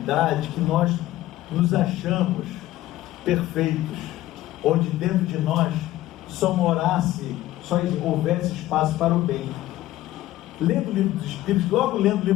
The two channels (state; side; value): quieter; right; 15.3 dB